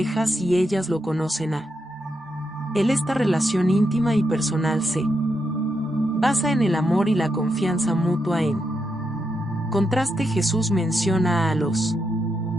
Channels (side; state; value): both; normal; correlation 0.83